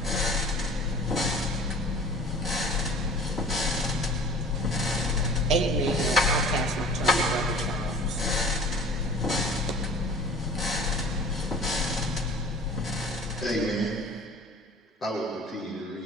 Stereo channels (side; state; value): both; normal; correlation 0.45